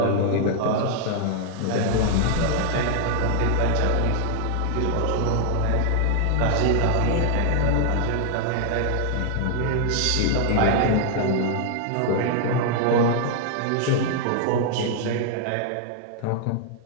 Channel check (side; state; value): both; different; correlation 0.00